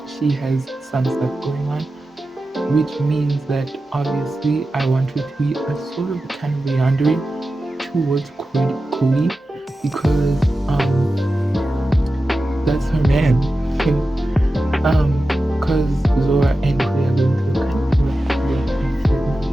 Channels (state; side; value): normal; both; correlation 0.93